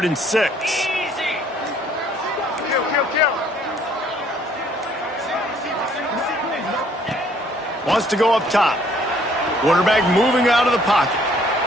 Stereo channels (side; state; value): both; normal; correlation 0.62